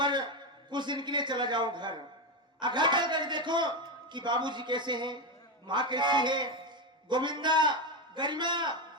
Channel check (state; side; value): normal; both; correlation 0.11